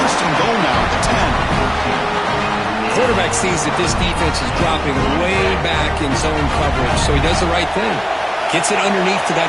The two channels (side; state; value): both; identical; correlation 1.00